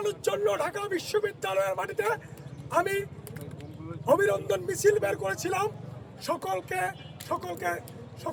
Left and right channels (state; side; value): identical; both; correlation 1.00